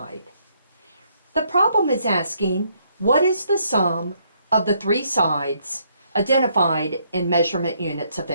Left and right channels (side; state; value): both; inverted; correlation -0.71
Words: The problem is asking, what is the sum of the three sides identified in measurement units of